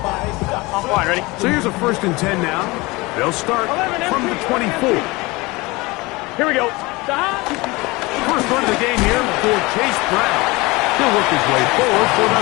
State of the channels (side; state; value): right; quieter; 23.2 dB